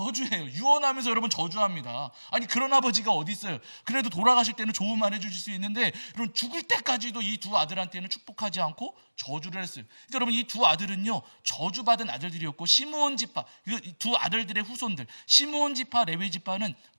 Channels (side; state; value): both; inverted; correlation -1.00